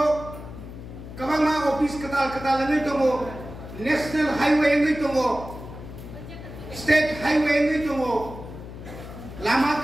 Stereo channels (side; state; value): left; noise; hum, 12 dB below the sound